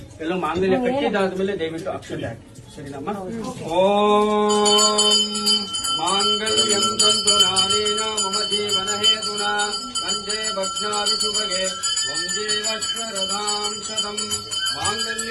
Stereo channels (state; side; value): identical; both; correlation 1.00